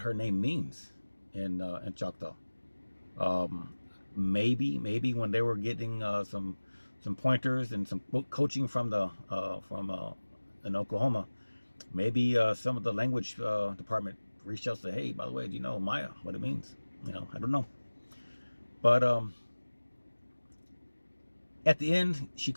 her name means in Choctaw. Maybe when they were getting some pointers and some coaching from in Oklahoma, maybe some of the language department reached out and said, "Hey, by the way, do you know Maya, what it means?" I don't know. But at the end, she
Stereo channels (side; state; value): both; inverted; correlation -1.00